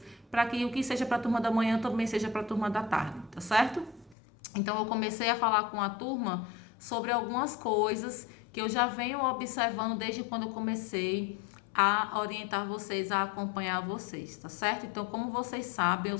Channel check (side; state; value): right; drops out; at 4.2 s